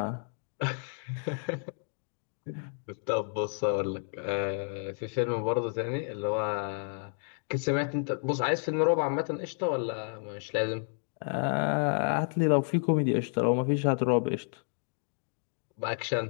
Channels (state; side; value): silent; right; 57 dB below the other